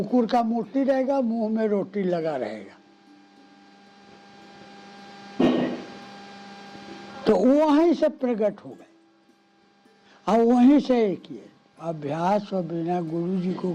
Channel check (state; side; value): identical; both; correlation 1.00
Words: का मूर्ति रहेगा, मुंह में रोटी लगा रहेगा। तो वहीं से प्रकट हो गए और वहीं से एक किए। अभ्यास और बिना गुरु जी को